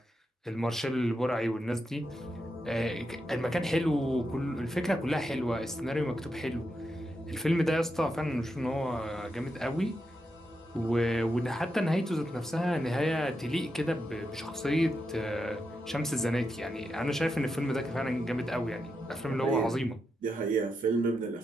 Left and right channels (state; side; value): normal; both; correlation 0.85